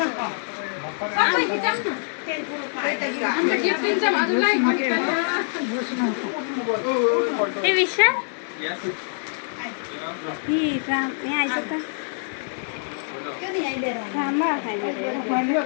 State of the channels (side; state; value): right; silent; 62 dB below the other